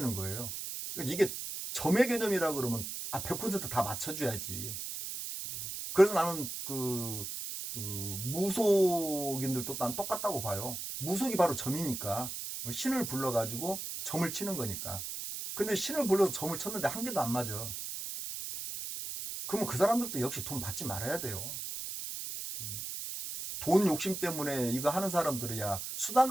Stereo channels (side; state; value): right; noise; hiss, 6 dB below the sound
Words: 거예요. 그러니까 이게 점의 개념이라 그러면 100%다 맞춰줘야지. 그래서 나는 무속인들도 난 똑같다고 봐요. 무속이 바로 점이니까, 신을 불러가지고 점을 치는 거니까. 근데 신을 불러서 점을 쳤는데 한 개도 안 맞아. 그러면 그 사람들도 역시 돈 받지 말아야 돼요. 돈 욕심 때문에 이거 하는 사람들이야